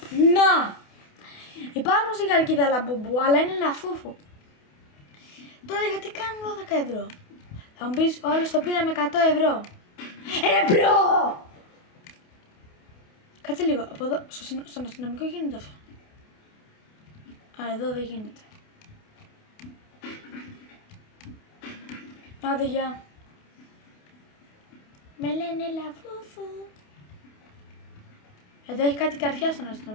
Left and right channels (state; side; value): late; right; 28 ms